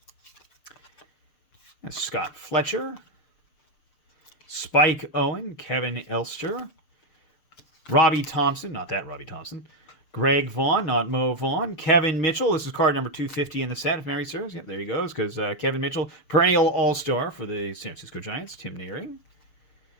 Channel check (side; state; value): right; late; 6.7 ms